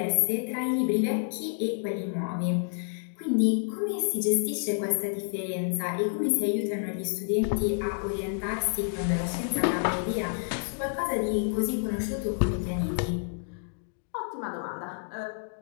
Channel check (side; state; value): right; silent; digital silence